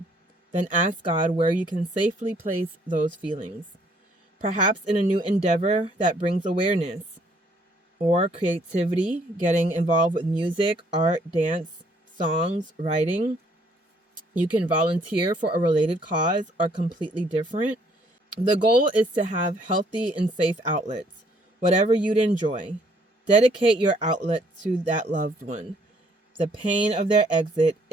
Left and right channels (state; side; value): normal; both; correlation 0.65